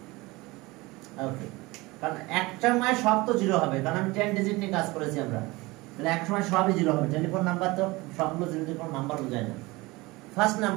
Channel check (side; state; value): left; quieter; 22.2 dB